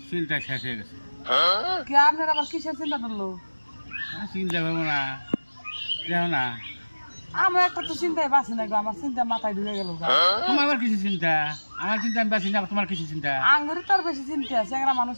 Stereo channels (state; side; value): inverted; both; correlation -1.00